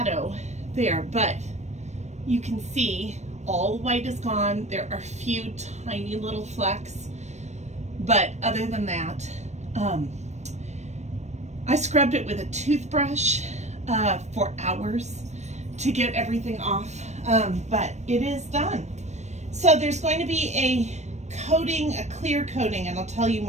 there, but you can see all the white is gone. There are a few tiny little flecks, but other than that, I scrubbed it with a toothbrush for hours to get everything off, but it is done. So there's going to be a coating, a clear coating, and I'll tell you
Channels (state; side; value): late; left; 0.33 ms